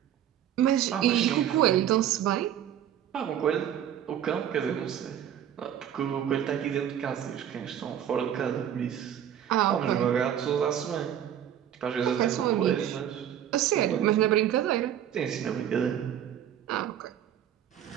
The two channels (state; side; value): quieter; left; 10.3 dB